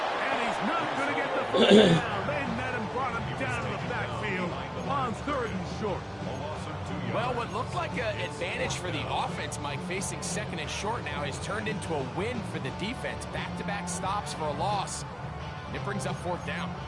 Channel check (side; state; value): both; identical; correlation 1.00